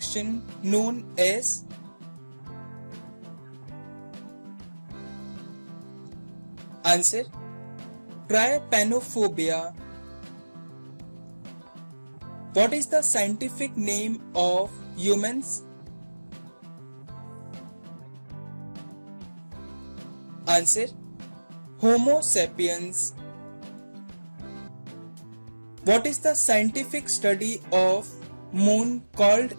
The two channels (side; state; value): both; inverted; correlation -1.00